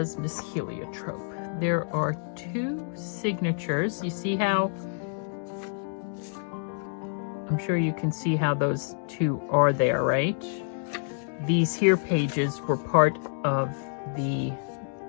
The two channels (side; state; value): right; silent; digital silence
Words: Miss Heliotrope? There are 2 signatures. You see how, I'm sure you can see how those 2 are there, right? These here pages were part of the